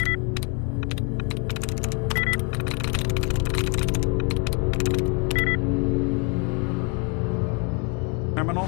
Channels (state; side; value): quieter; right; 34.7 dB